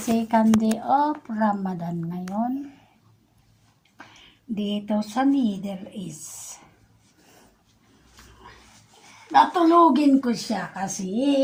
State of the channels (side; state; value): both; identical; correlation 1.00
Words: day of Ramadan ngayon. Dito sa Middle East. Natulugin ko siya kasi